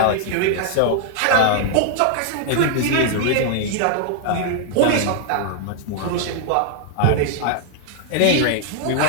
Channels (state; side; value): different; both; correlation -0.01